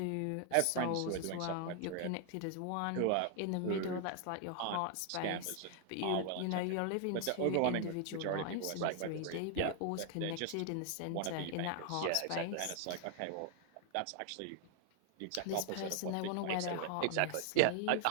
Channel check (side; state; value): both; different; correlation 0.00